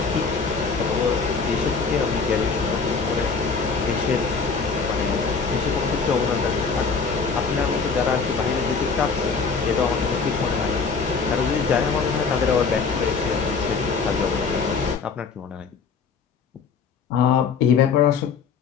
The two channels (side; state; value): right; quieter; 5.2 dB